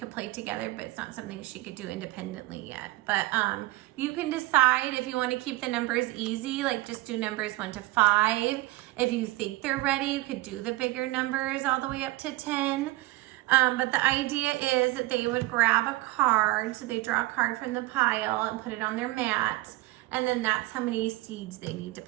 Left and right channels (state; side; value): quieter; left; 19.5 dB